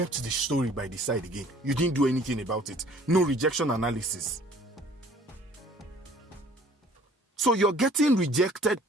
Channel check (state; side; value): normal; both; correlation 0.54